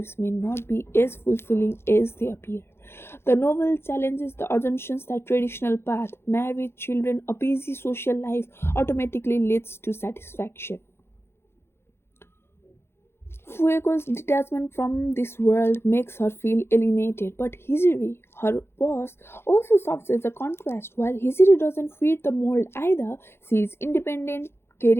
may not be as fulfilling as they appear. The novel challenges the assumptions that traditional path, marriage, children, a busy social life automatically leads to satisfaction. Fuego's detachment from this world makes her feel alienated, but Hijiri, her boss, also serves as a contrast. While Hijiri doesn't fit the mold either, she is independent,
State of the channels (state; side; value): late; right; 0.12 ms